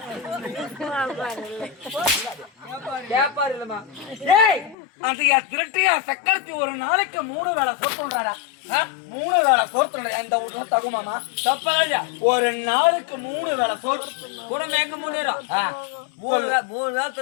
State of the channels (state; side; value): drops out; right; at 4.8 s